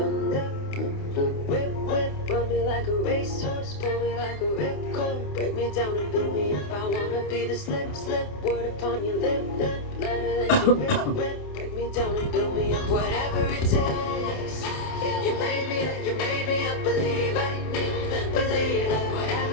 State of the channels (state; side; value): late; right; 28 ms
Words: Whip, run me like a racehorse, pull me like a ripcord. Break me down and build me up, I wanna be the slip, word upon your lip, letter that you rip. Break me down and build me up, whatever it takes. You made me a believer,